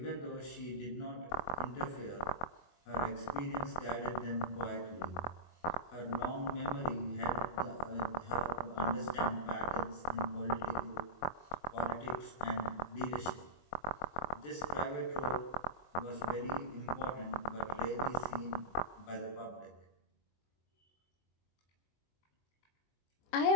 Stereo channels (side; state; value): right; late; 24 ms